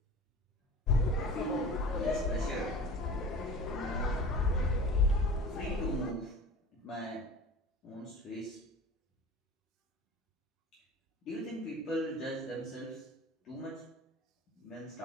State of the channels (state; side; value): normal; both; correlation 0.39